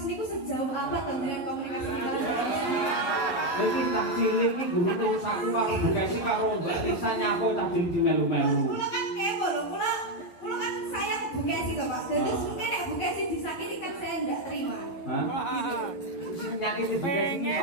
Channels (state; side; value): late; right; 11 ms